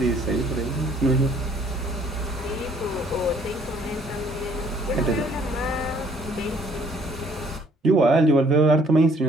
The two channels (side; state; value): both; normal; correlation 0.61